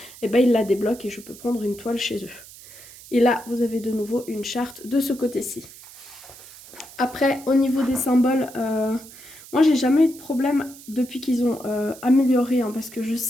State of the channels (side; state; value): right; noise; hiss, 19 dB below the sound